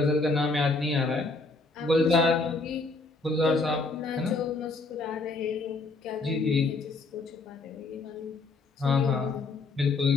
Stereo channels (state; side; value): quieter; right; 3.6 dB